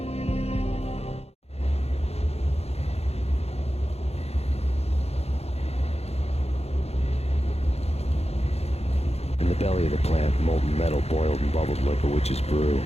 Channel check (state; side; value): late; right; 0.30 ms